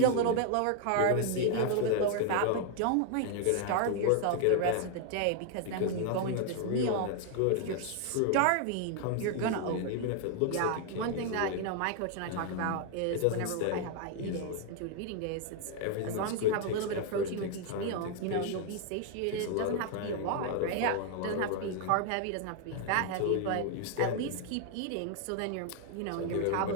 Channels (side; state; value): both; different; correlation 0.00